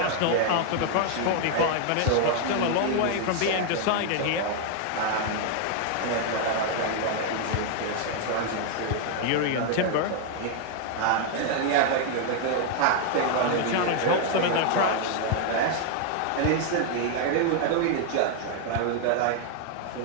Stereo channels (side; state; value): both; different; correlation 0.00